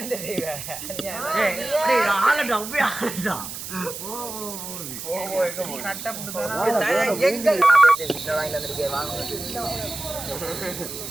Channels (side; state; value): right; noise; hiss, 9 dB below the sound